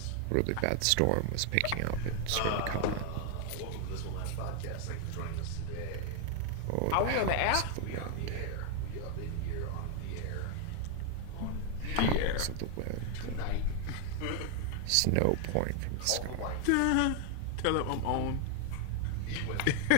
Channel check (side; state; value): both; different; correlation 0.00